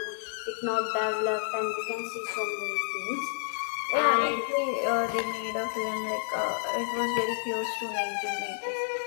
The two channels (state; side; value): silent; right; digital silence